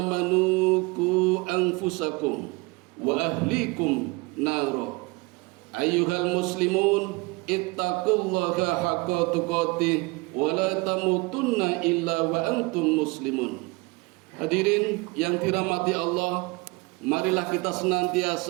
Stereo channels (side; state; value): left; quieter; 26.0 dB